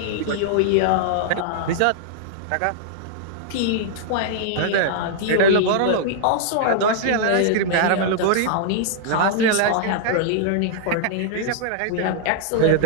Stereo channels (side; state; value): both; different; correlation -0.01